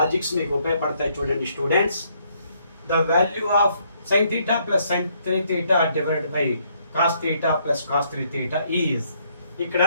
మీకు ఉపయోగపడతాయి చూడండి students. The value of sin theta plus sin 3 theta divided by cos theta plus cos 3 theta is, ఇక్కడ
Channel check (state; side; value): inverted; both; correlation -0.70